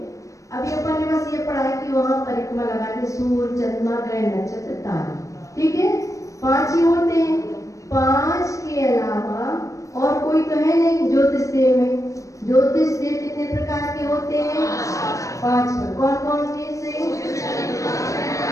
अभी अपन ने बस ये पढ़ा है कि वहां परिक्रमा लगाते सूर्य, चंद्रमा, ग्रह, नक्षत्र, तारे, ठीक है, 5 ही होते हैं। 5 के अलावा और कोई तो है नहीं ज्योतिष देव में। ज्योतिष देव कितने प्रकार के होते हैं? 5। कौन कौन से?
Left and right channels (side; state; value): right; late; 0.16 ms